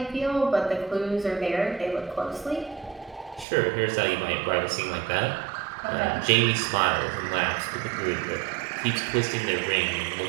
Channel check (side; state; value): left; drops out; at 3.5 s